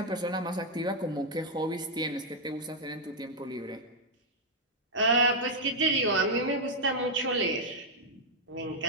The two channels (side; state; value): both; normal; correlation -0.02